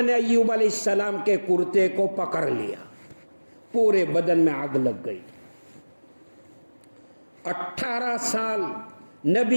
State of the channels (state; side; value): inverted; both; correlation -1.00